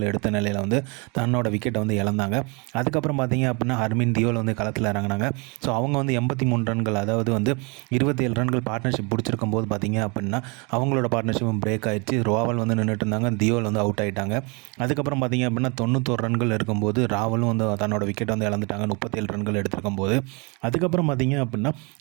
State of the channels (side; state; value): left; quieter; 30.6 dB